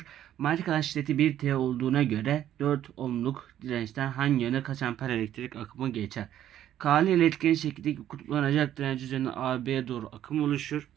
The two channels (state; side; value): quieter; left; 11.5 dB